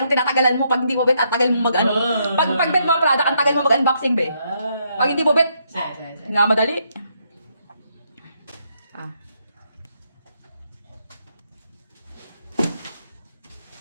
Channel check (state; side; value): inverted; both; correlation -0.75